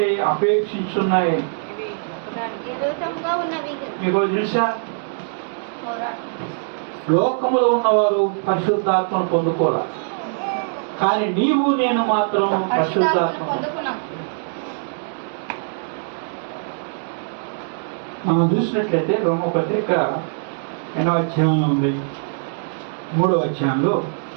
అపేక్షించున్నాయి. మీకు తెలుసా, లోకములో ఉన్నవారు పరిశుద్ధాత్మను పొందుకోవాలి, కానీ నీవు నేను మాత్రం పరిశుద్ధాత్మ. మనం చూసినట్లయితే రోమపత్రిక 8వ అధ్యాయంలో ఉంది, 3వ అధ్యాయంలో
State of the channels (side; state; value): left; silent; digital silence